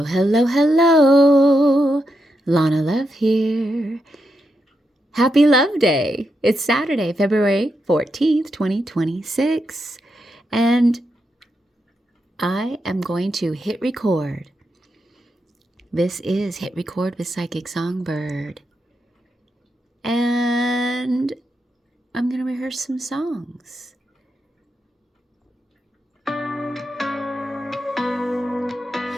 hello, hello. Lana Love here. Happy Love Day. It's Saturday, February 14th, 2026. And I am going to hit record. This is Hit Record with Psychic Songbird. And I'm going to rehearse some songs.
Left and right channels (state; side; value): normal; both; correlation 0.84